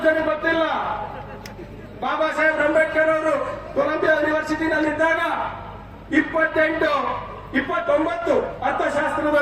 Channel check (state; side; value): identical; both; correlation 1.00